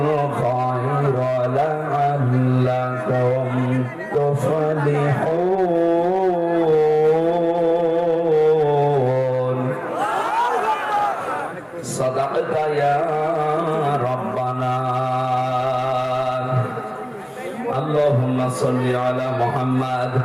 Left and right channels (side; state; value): both; identical; correlation 1.00